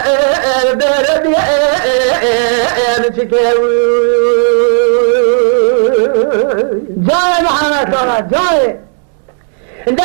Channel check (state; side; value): silent; left; 57 dB below the other